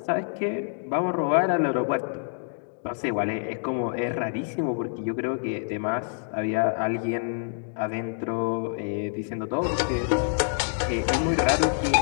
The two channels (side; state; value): right; silent; digital silence